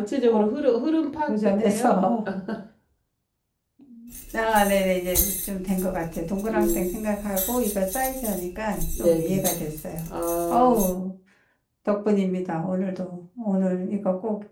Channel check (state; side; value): identical; both; correlation 1.00